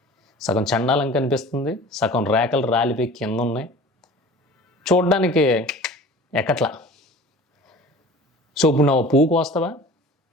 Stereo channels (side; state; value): both; normal; correlation 0.42